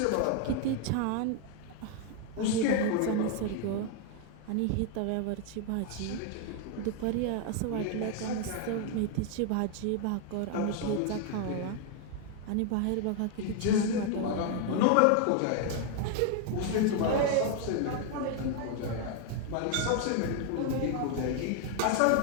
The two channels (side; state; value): both; different; correlation 0.00